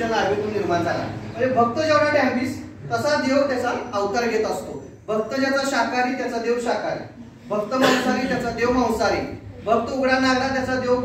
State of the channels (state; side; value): identical; both; correlation 1.00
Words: नाभीतून निर्माण झाला. म्हणजे भक्त जेवढा डॅम्बिस तसा देव त्याचा अवतार घेत असतो. भक्त ज्याचा शाकाहारी त्याचा देव शाकाहारी, भक्त मांसाहारी त्याचा देव मांसाहारी, भक्त उघडा नागरा त्याचा देव